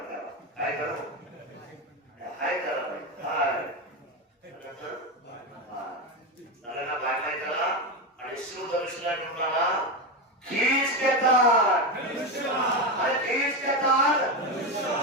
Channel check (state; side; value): normal; both; correlation 0.13